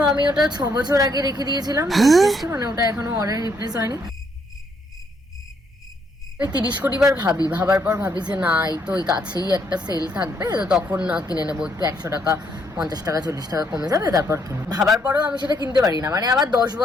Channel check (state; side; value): normal; both; correlation 0.72